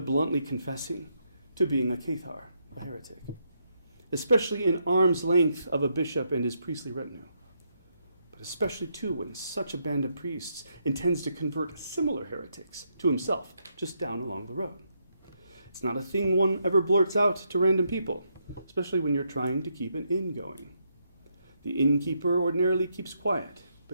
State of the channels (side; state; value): both; inverted; correlation -0.78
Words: bluntly confessing to being a cathar, a heretic, especially in arm's length of a bishop and his priestly retinue. But especially, too, when such a band of priests intends to convert similar heretics to himself just down along the road. It's not a thing one ever blurts out to random people, especially when you're trying to keep an inn going. The innkeeper ordinarily keeps quiet,